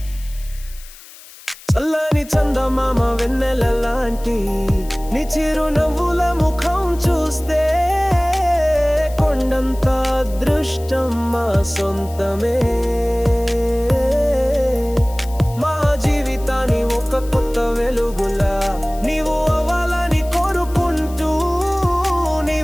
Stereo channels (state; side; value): noise; left; hiss, 20 dB below the sound